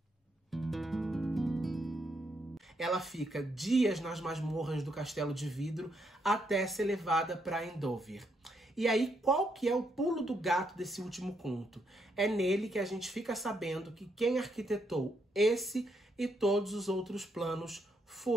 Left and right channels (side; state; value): both; normal; correlation 0.77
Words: Ela fica dias nas masmorras do Castelo de Vidro até ser levada para Endover. E aí, qual que é o pulo do gato desse último conto? É nele que a gente fica sabendo que quem arquitetou esse e todos os outros planos